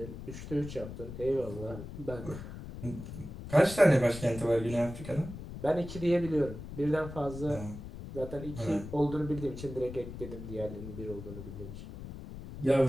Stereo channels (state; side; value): noise; left; rumble, 11 dB below the sound